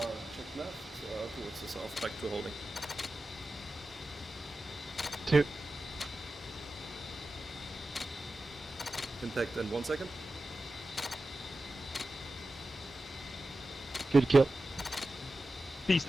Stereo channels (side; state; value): both; normal; correlation 0.93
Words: check left towards the south, back to holding. 2. Impact in 1 second. Good kill. Beast